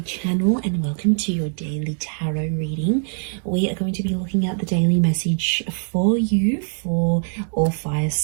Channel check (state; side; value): silent; left; 64 dB below the other